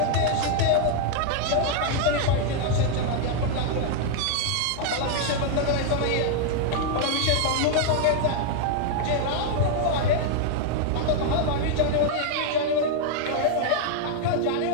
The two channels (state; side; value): different; both; correlation 0.00